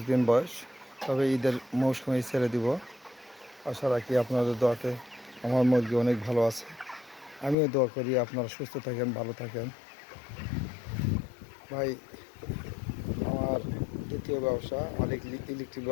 দিন বয়স, তবে ঈদের মৌসুমে ছেড়ে দিব। আশা রাখি আপনাদের দোয়াতে আমার মুরগি অনেক ভালো আছে। আমিও দোয়া করি আপনারা সুস্থ থাকেন, ভালো থাকেন। ভাই, আমার দ্বিতীয় ব্যবসা, আমার ইলেকট্রিক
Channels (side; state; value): right; drops out; at 7.6 s